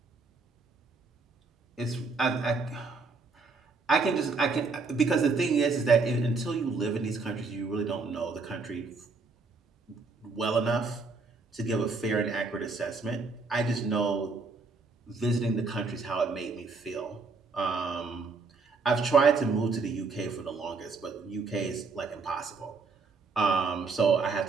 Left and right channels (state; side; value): quieter; left; 4.2 dB